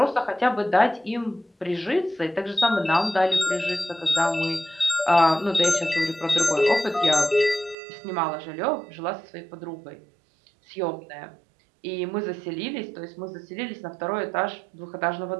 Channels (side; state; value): left; drops out; at 7.8 s